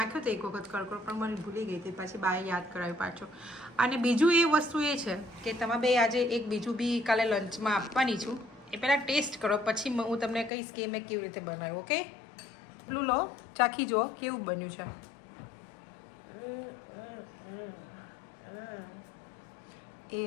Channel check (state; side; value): drops out; right; at 10.5 s